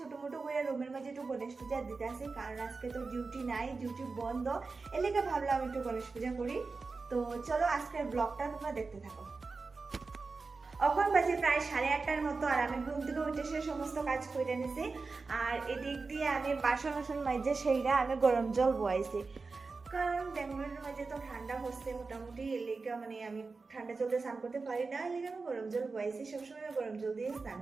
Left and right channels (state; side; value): quieter; left; 4.2 dB